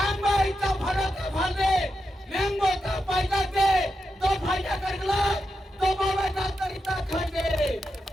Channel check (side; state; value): both; normal; correlation 0.87